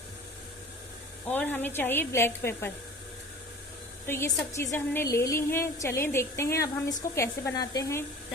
और हमें चाहिए ब्लैक पेपर। तो ये सब चीज़ें हमने ले ली हैं। चलें देखते हैं अब हम इसको कैसे बनाते हैं।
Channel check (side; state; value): both; normal; correlation 0.41